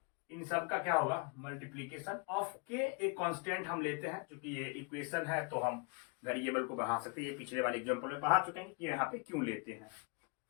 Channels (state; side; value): quieter; right; 32.5 dB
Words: इन सब का क्या होगा, मल्टीप्लीकेशन ऑफ के एक कांस्टेंट हम लेते हैं, क्योंकि ये इक्वेशन है तो हम वेरिएबल को बढ़ा सकते हैं। ये पिछले वाले एग्जांपल में पढ़ा चुके हैं कि यहाँ पे क्यों लेते हैं।